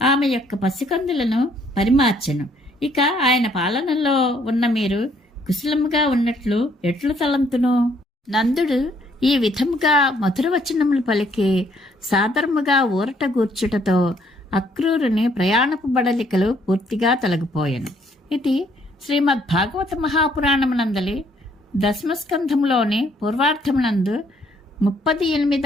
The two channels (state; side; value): normal; both; correlation 0.67